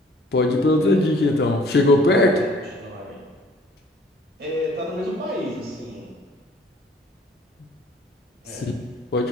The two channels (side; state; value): both; normal; correlation 0.55